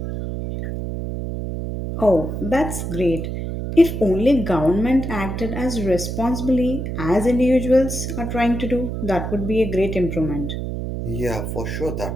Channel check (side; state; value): right; noise; hum, 4 dB below the sound